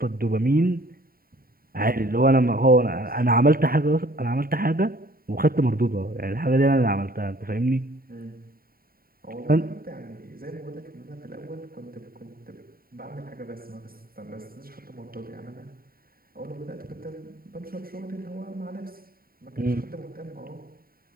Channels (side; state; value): left; late; 0.43 ms